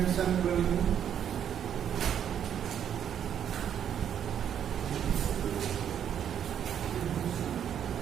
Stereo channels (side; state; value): left; quieter; 9.1 dB